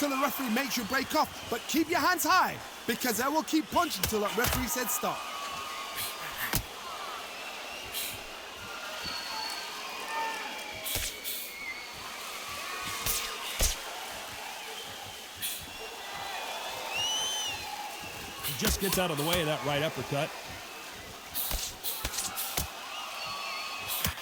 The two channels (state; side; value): identical; both; correlation 1.00